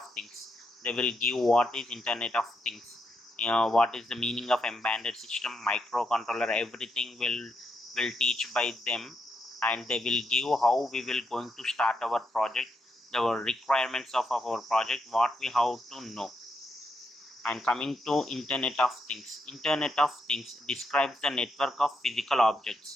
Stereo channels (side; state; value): both; normal; correlation 0.80